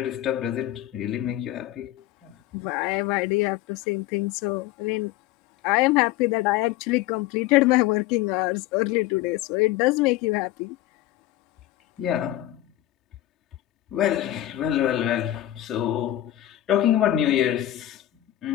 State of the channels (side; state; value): right; quieter; 14.4 dB